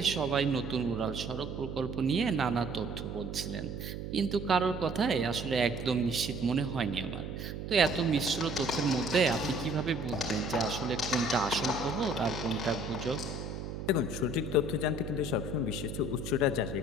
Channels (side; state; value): right; noise; hum, 7 dB below the sound